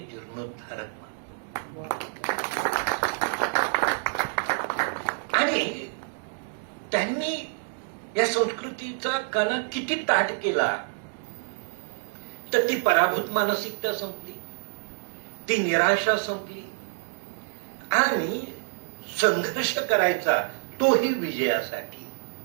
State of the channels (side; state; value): left; silent; 60 dB below the other